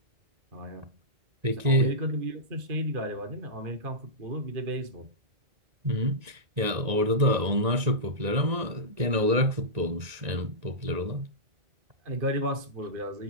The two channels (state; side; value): late; left; 1.9 ms